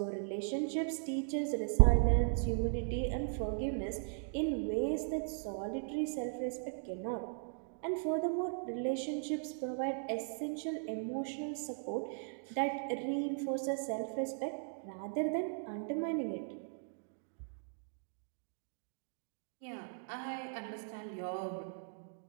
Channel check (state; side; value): silent; left; digital silence